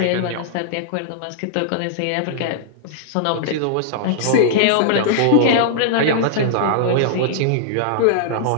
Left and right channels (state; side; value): different; both; correlation -0.02